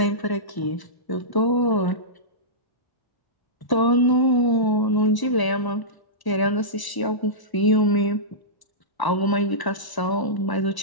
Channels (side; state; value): right; late; 1.0 ms